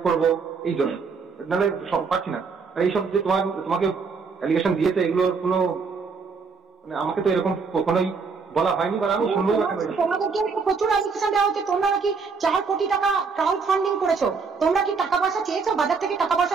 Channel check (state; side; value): quieter; left; 5.0 dB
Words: করবো এই জন্য, নাহলে সব পাচ্ছি না। আর এইসব যে তোমাকে অ্যালিগেশন দিয়েছে এগুলোর কোনো মানে আমাকে তো এরকম কখনোই বলা হয়নি, বা আমি শুনবো। তোমাদেরকে প্রচুর অ্যালিগেশন দেওয়া হচ্ছে, তোমরা নাকি 4 কোটি টাকা ক্রাউড ফান্ডিং করেছো। তোমরা কি টাকা পয়সা চেয়েছো? বাজার থেকে টাকা পয়সা